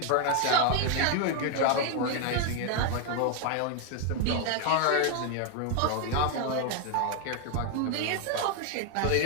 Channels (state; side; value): different; both; correlation 0.01